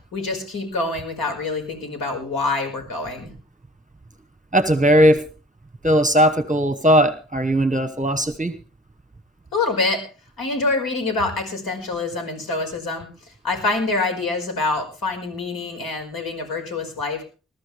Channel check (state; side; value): normal; both; correlation 0.42